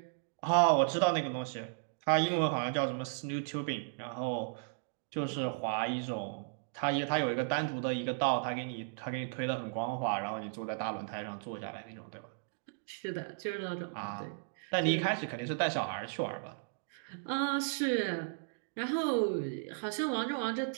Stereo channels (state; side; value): silent; left; digital silence